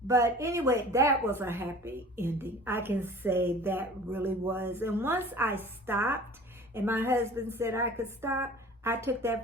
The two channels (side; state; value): both; normal; correlation 0.43